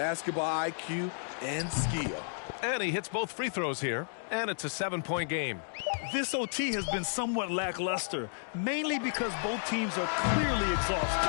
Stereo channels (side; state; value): right; silent; digital silence